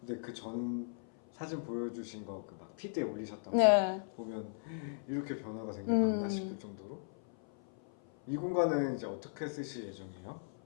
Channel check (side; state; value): right; silent; 53 dB below the other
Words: 근데 그 전 사진 보여주신 거 그 막 피드에 올리셨던 네. 거 보면 이렇게 변화가 생겼나 싶을 정도로. 이 공간은 이제 어떻게 쓰실 예정이에요?